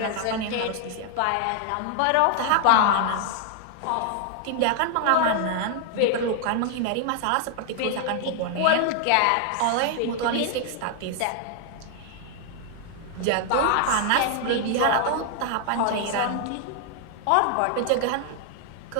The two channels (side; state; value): both; different; correlation 0.00